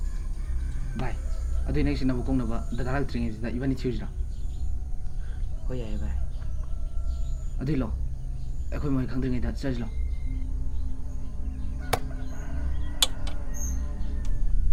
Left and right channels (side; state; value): both; identical; correlation 1.00